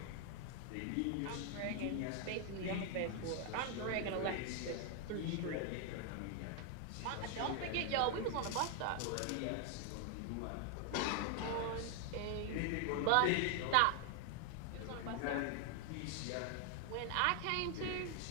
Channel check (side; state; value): both; different; correlation 0.00